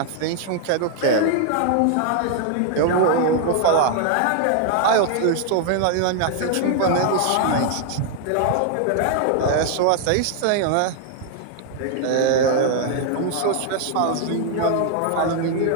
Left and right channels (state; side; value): different; both; correlation 0.00